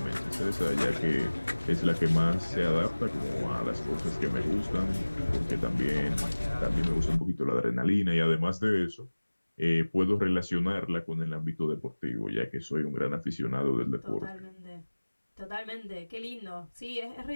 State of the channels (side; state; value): both; inverted; correlation -1.00